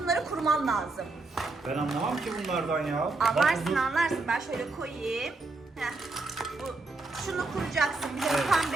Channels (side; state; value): left; quieter; 3.4 dB